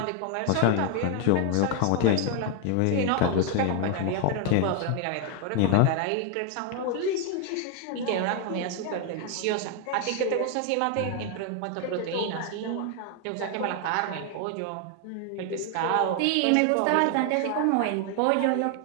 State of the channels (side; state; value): both; different; correlation 0.00